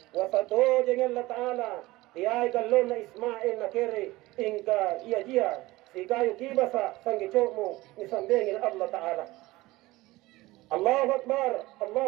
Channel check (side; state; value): left; quieter; 19.5 dB